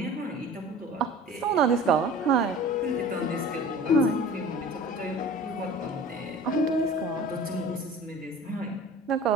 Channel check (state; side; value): normal; both; correlation 0.42